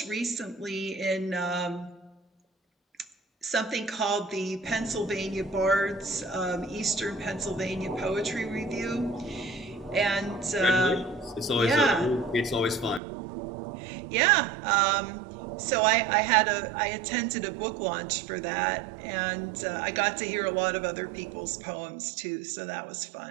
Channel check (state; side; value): drops out; left; at 13.0 s